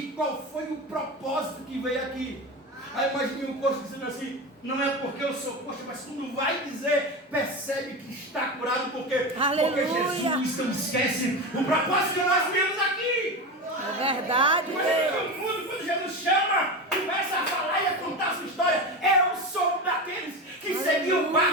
qual foi o propósito que veio aqui? Aí imagine o coxo dizendo assim: não é porque eu sou coxo, mas quando vai dizer, percebe que está curado, porque Jesus não esquece o propósito que nós viemos aqui. É verdade, Deus. Quando Jesus chama, começa a falar e a contar a sua história. Eu sou daqueles que seguiu o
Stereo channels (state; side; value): normal; both; correlation 0.22